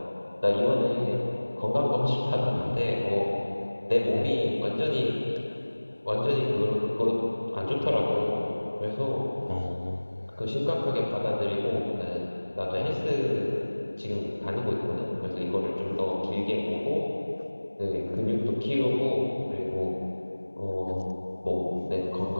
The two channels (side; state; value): both; inverted; correlation -1.00